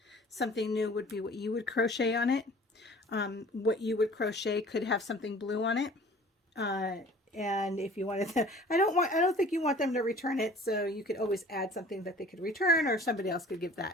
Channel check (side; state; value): both; normal; correlation 0.48